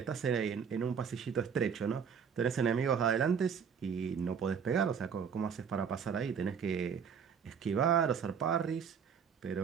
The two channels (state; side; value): quieter; left; 6.9 dB